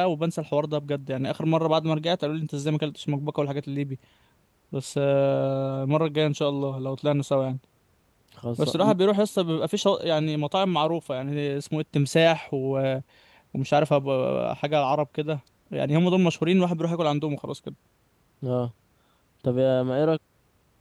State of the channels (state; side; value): identical; both; correlation 1.00